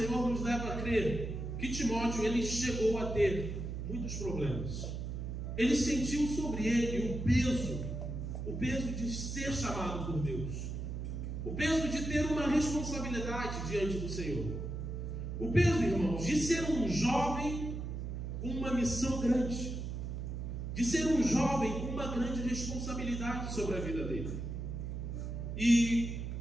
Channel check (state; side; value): noise; right; hum, 5 dB below the sound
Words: nos leva a crer que Timóteo, ele chegou a ter muitos problemas. Ele sentiu sobre ele o peso de ser chamado por Deus, o peso de ter uma responsabilidade diante do Senhor, o peso, irmãos, de ser um jovem com uma missão grande, de ser um jovem com uma grande responsabilidade sobre a vida dele. E